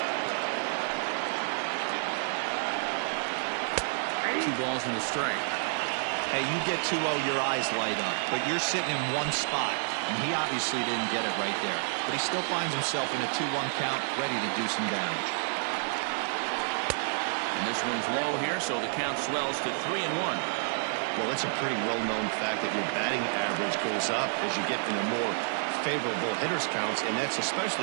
Two balls and a strike. Hey, you get 2-0, your eyes light up, but you're sitting in one spot, and he obviously didn't get it right there. But he still finds himself in a 2-1 count, ready to do some damage. And this one's low here, so the count swells to 3-1. Well, it's a pretty well-known fact that your batting average goes up as you get into more favorable hitters counts, and that's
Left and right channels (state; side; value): silent; left; digital silence